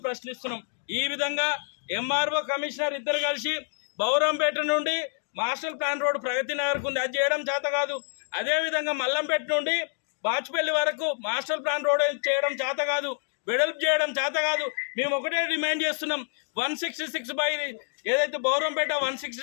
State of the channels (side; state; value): right; silent; 57 dB below the other